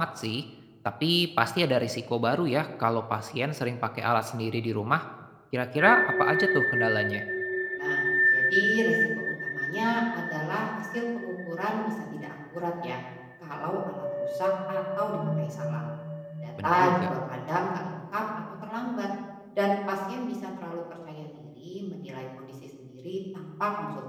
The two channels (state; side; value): identical; both; correlation 1.00